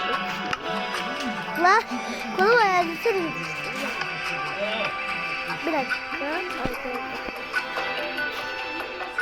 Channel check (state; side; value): noise; left; rumble, 25 dB below the sound